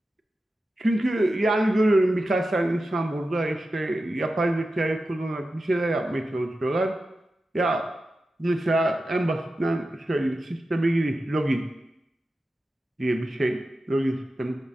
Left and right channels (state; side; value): normal; both; correlation 0.92